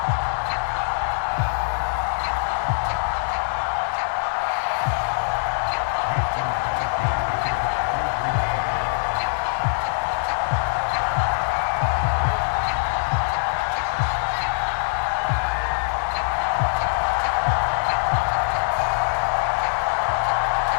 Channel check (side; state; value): right; silent; digital silence